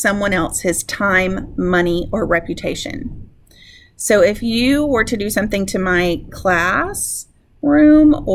else his time, money, or reputation. So if you were to do something to my classroom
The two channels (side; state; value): both; identical; correlation 1.00